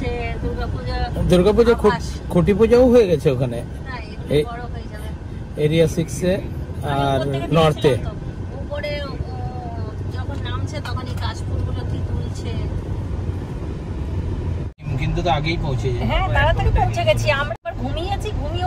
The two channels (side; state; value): both; identical; correlation 1.00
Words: দুর্গাপূজা খুঁটি পূজাও হয়ে গেছে ওখানে বড় হয়ে যাবে এরিয়া 6-এ আর নর্থে। উপরে যখন নামছে তখন এই কাশফুলগুলো কি তুলছে। কিন্তু তো আগেই পৌঁছে যায়। হ্যাঁ তাড়াতাড়ি পৌঁছে গেছি আমরা। ঘুমিয়েছি, ঘুমিয়ে